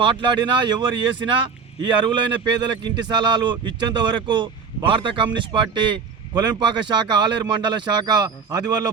మాట్లాడినా, ఎవరు చేసినా ఈ అర్హులైన పేదలకు ఇంటి స్థలాలు ఇచ్చేంత వరకు భారత కమ్యూనిస్ట్ పార్టీ కొలెంపాక శాఖ ఆలేరు మండల శాఖ ఆధ్వర్యంలో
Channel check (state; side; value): quieter; left; 5.8 dB